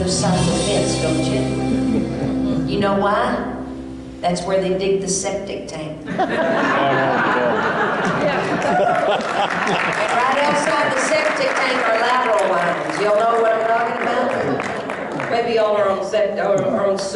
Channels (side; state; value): both; identical; correlation 1.00